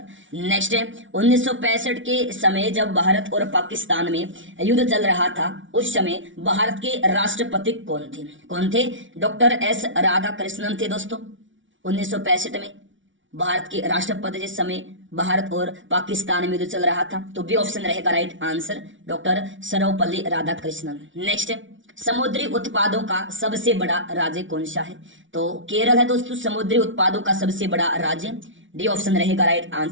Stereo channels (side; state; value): left; late; 0.56 ms